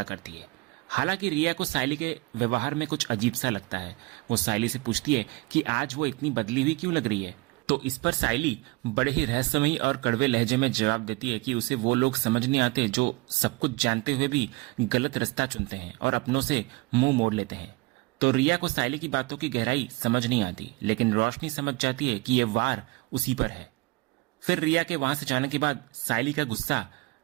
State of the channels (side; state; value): left; quieter; 23.9 dB